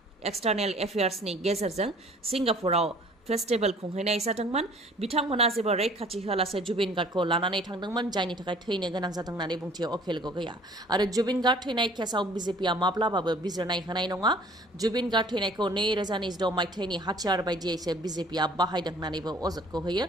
एक्सटार्नेल एफेयार्सनि गेजेरजों सिंगापुराव फेस्टिभेल खुंहैनाय जादोंमोन। बिथांमोना जेबो रैखाथि होआलासे जुबिन गार्गखौ लानानै थांदोंमोन, जायनि थाखाय थैनो गोनां जादों होननानै बुंथियो अखिल गगैया। आरो जुबिन गार्ग थैनाय केसाव बिजेपिआ माब्लाबाबो बिजिरनाय होनाय नङा। जुबिन गार्ग थैनायखौ 2026 मायथाइनि हाथियार बायदियैसो बिजेपिआ बाहायदों होननानैबो अजदखौ होयो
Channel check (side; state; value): both; normal; correlation 0.53